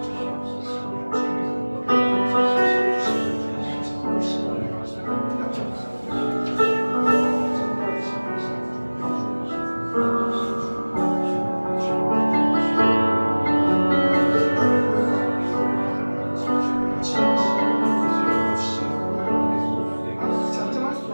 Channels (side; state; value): both; inverted; correlation -1.00